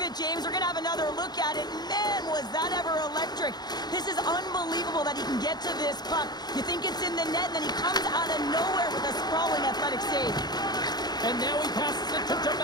it, James. We're going to have another look at it. Man, was that ever electric. This is unbelievable that he can get to this puck. You think it's in the net, and then he comes out of nowhere with a sprawling athletic save. And now he passes it to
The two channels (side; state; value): right; late; 0.20 ms